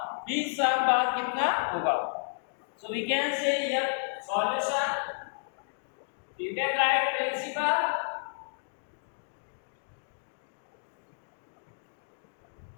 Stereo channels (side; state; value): right; silent; digital silence